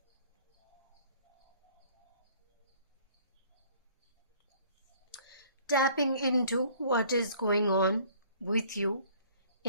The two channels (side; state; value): both; inverted; correlation -0.55